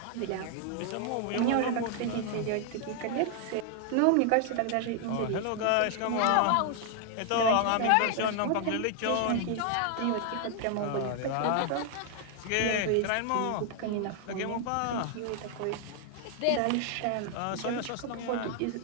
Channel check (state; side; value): different; both; correlation 0.00